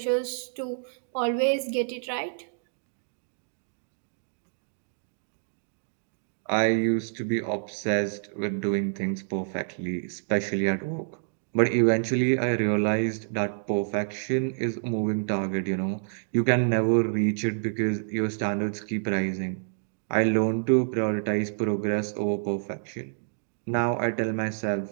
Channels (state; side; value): silent; left; digital silence